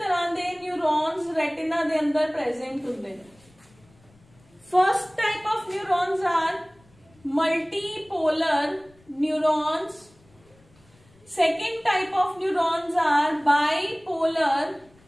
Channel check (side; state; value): left; noise; rumble, 30 dB below the sound